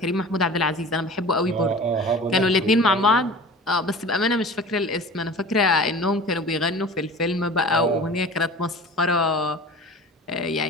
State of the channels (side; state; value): both; normal; correlation 0.38